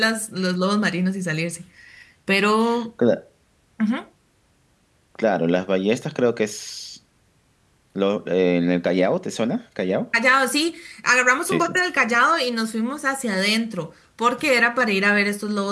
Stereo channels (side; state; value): both; identical; correlation 1.00